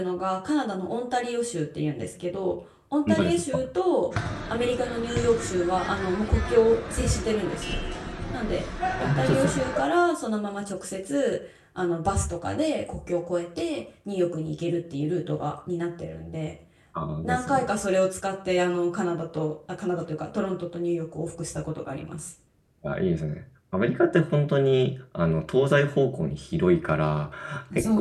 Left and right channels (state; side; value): identical; both; correlation 1.00